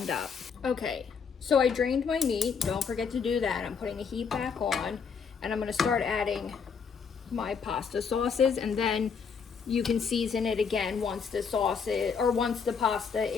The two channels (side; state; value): right; quieter; 6.0 dB